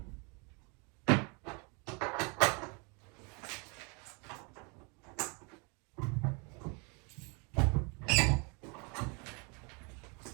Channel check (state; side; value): quieter; left; 32.4 dB